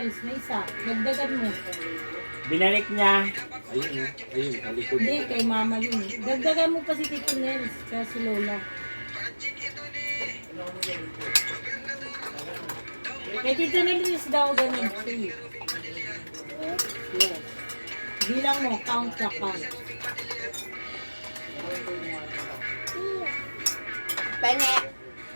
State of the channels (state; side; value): inverted; both; correlation -1.00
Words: Na isa. Dagdagan mo. Binalik niya. Ayun, ayun, talikod. Hindi, kay mama yun. Dagdagan mo pa si Tito Nels. Kaya si Lola. Kay Tito Nels daw ganun. 3. Yes. Bilang mo, count na count. Penge.